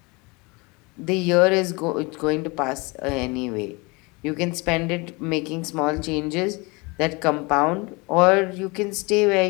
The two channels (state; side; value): quieter; right; 26.8 dB